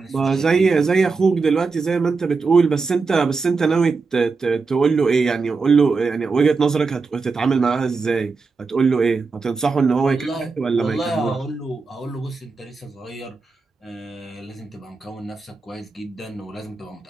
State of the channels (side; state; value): left; quieter; 4.4 dB